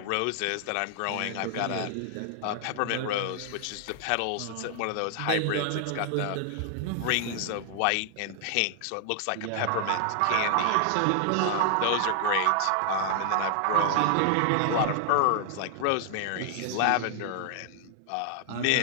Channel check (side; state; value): both; different; correlation 0.00